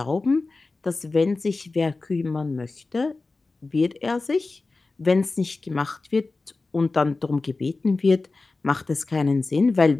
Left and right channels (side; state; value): right; quieter; 3.6 dB